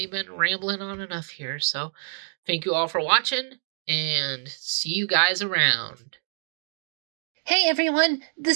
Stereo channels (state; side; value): silent; left; 61 dB below the other